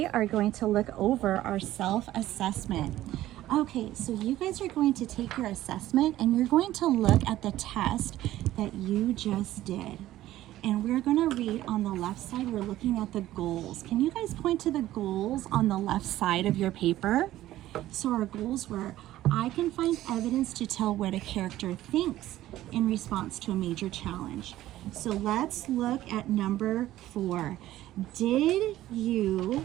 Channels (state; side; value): quieter; left; 14.5 dB